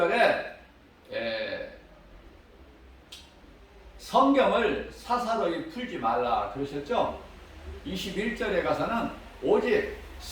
성경을 사사로이 풀지 말라 그러셨죠? 21절에 가서는 오직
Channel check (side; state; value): both; identical; correlation 1.00